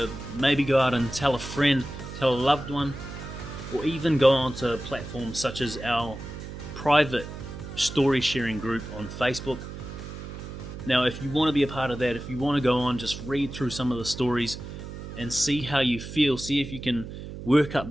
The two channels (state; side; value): noise; right; hum, 10 dB below the sound